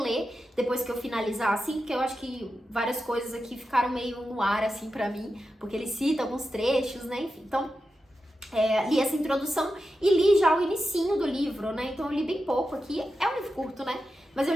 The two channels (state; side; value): normal; both; correlation 0.90